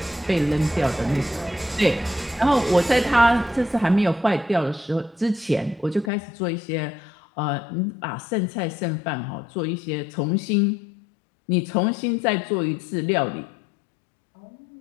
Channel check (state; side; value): drops out; right; at 6.1 s